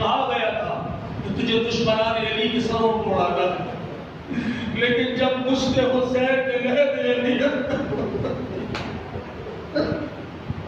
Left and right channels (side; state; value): both; identical; correlation 1.00